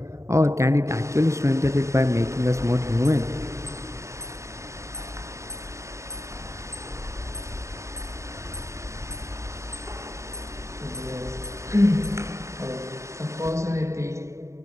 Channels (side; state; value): left; late; 0.14 ms